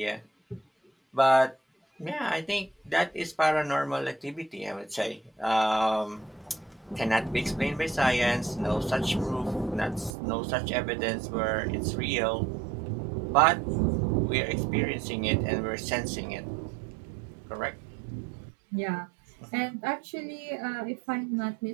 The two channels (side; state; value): left; drops out; at 10.2 s